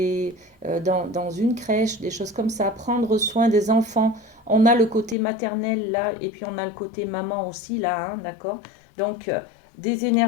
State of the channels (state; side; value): drops out; right; at 5.2 s